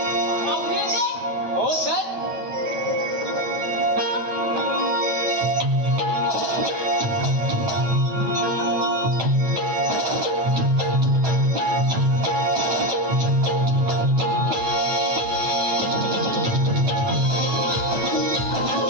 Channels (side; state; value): left; late; 9.0 ms